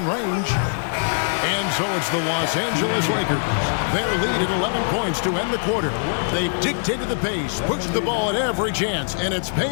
range. And so it's the Los Angeles Lakers. Their lead at 11 points to end the quarter. They've dictated the pace, pushed the ball at every chance, and it's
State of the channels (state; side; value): silent; right; digital silence